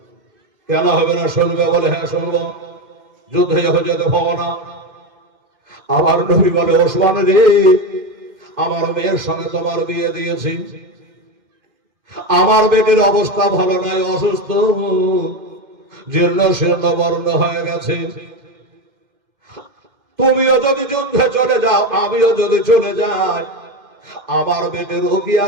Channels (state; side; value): late; left; 2.1 ms